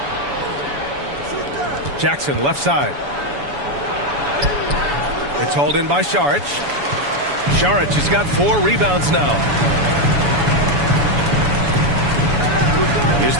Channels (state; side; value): late; left; 7.0 ms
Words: Jackson, left side. It's hauled in by Šarić. Šarić has got 4 rebounds now. Here's